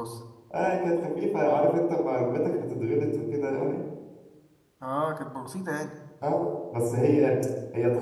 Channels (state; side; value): identical; both; correlation 1.00